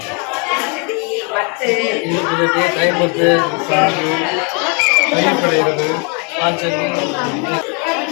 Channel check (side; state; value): right; quieter; 34.9 dB